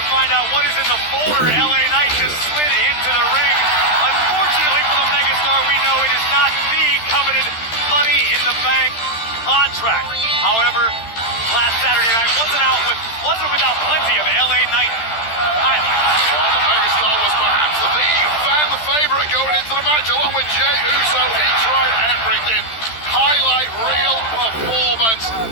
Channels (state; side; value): late; right; 13 ms